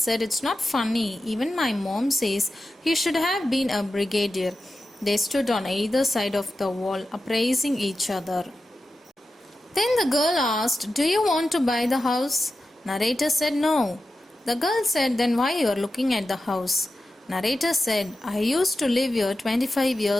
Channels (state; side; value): normal; both; correlation 0.92